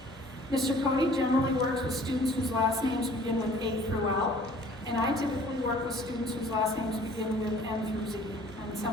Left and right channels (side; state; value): both; normal; correlation 0.52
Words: Mr. Cody generally works with students whose last names begin with A through L, and I typically work with students whose last names begin with M through Z, and